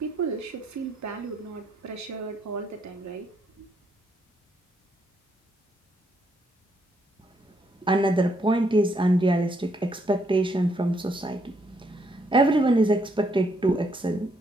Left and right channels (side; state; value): both; normal; correlation 0.74